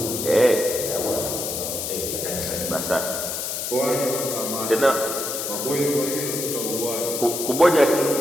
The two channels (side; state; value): left; noise; hiss, 4 dB below the sound